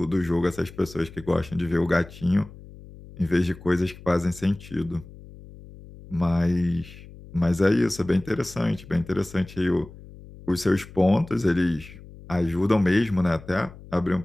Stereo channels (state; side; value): noise; left; hum, 18 dB below the sound